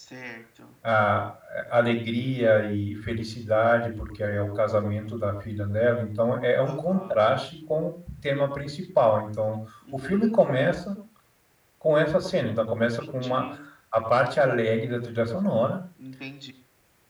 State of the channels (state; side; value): identical; both; correlation 1.00